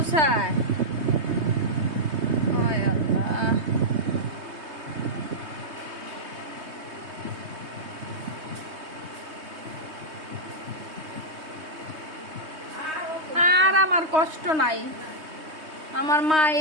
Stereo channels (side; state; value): left; late; 3.2 ms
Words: ওয় আল্লাহ। আর আমার কষ্ট নাই। আমার মা